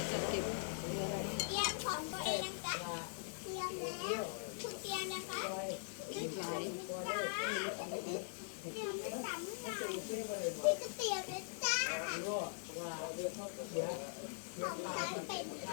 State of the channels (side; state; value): right; silent; digital silence